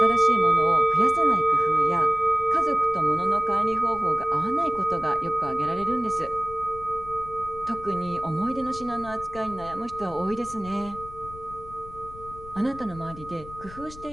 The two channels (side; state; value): left; noise; rumble, 17 dB below the sound